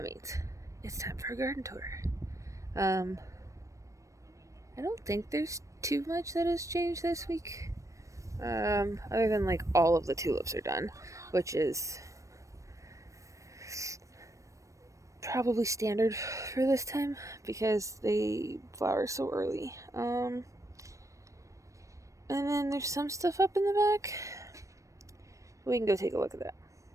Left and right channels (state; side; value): late; left; 0.15 ms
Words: means. It's time for a garden tour. I don't think there's too much that has changed this week. Other than like all of the tulips are done, which is probably standard for this time because they flower so early. And then there's some stuff up in the back. We can go take a look at that.